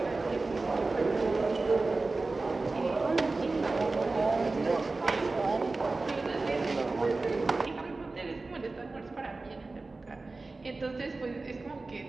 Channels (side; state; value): left; quieter; 3.5 dB